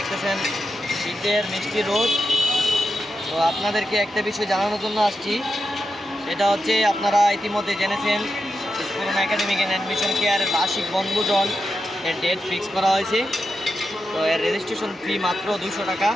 শীতের মিষ্টি রোদ। তো আপনাদেরকে একটা বিষয় জানানোর জন্য আসছি, সেটা হচ্ছে আপনারা ইতিমধ্যে জেনেছেন স্ফুরণ একাডেমিক অ্যান্ড অ্যাডমিশন কেয়ারের বার্ষিক বনভোজন এর ডেট ফিক্স করা হয়েছে। তো এর রেজিস্ট্রেশন ফি মাত্র 200 টাকা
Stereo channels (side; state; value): both; normal; correlation 0.88